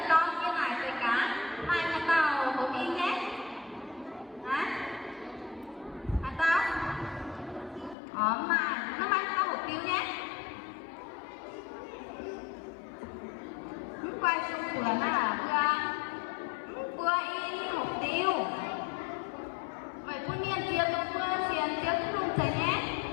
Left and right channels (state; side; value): drops out; right; at 8.0 s